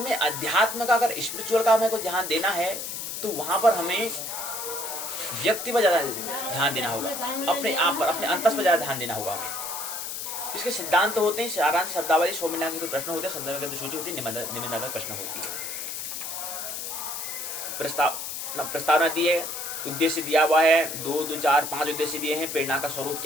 अध्यात्म का, अगर स्पिरिचुअल का हमें को ध्यान देना है तो वहां पर हमें व्यक्ति पर ज्यादा ध्यान देना होगा, अपने आप पर, अपने अंतस पर ज्यादा ध्यान देना होगा हमें। इसके सिद्धांत तो होते हैं, सारांश, शब्दावली, सौमिला के तो प्रश्न होते हैं, संदर्भ के सूची होती है, निबंधात्मक प्रश्न होती है। प्रस्तावना दी है, उद्देश्य दिया हुआ है, 2, 2, 4, 5 उद्देश्य दिए हैं। प्रेरणा का स्वरूप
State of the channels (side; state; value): left; noise; hiss, 5 dB below the sound